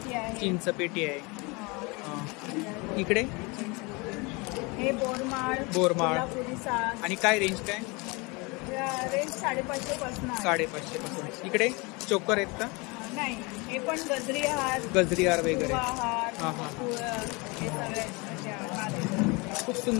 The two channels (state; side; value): quieter; right; 27.5 dB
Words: चिंचपेटी आहे. इकडे हे बोरमाळ, कोल्हापुरी साज. आणि काय रेंज काय? रेंज 550 पासून. 550 पासून. इकडे चोकर आहेत का? नाही, हे पण गजरी हार वगैरे. खूप